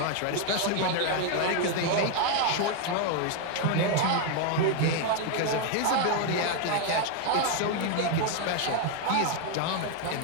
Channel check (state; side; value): different; both; correlation 0.01